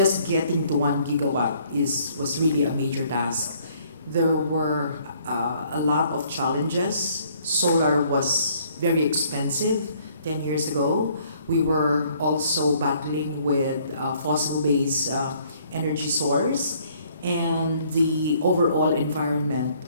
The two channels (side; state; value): both; inverted; correlation -0.62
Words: getting to 1 gigawatt was really a major task. There were a lot of challenges. Solar was very expensive 10 years ago. We were also battling with fossil-based energy source, and the overall environment